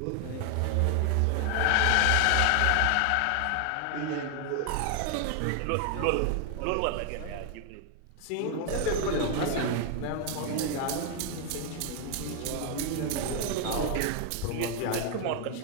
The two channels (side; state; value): both; different; correlation 0.00